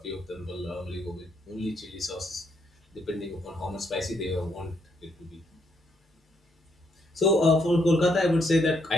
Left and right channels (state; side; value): normal; both; correlation 0.74